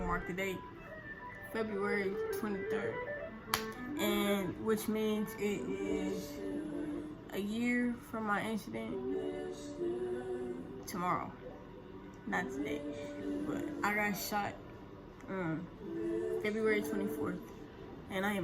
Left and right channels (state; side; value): identical; both; correlation 1.00